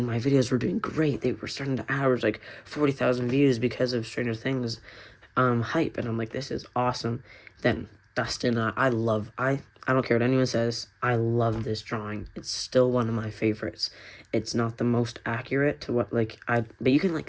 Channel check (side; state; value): both; identical; correlation 1.00